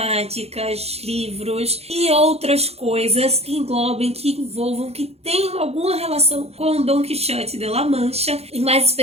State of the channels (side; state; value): left; late; 0.30 ms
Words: livros e outras coisas que englobem, que envolvam, que tenham alguma relação com Dom Quixote de La Mancha. E mais